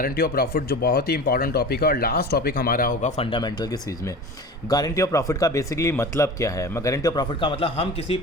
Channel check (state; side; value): normal; both; correlation 0.35